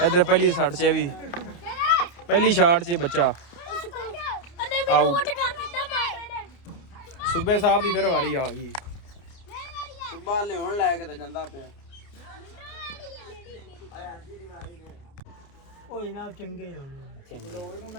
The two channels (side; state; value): right; late; 29 ms